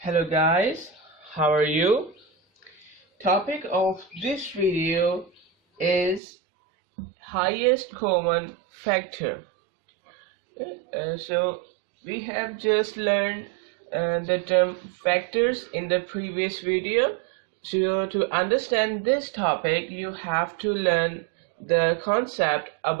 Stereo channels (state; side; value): drops out; left; at 6.2 s